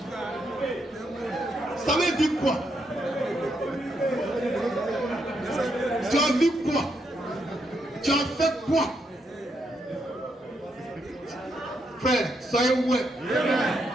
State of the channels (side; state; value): both; normal; correlation 0.78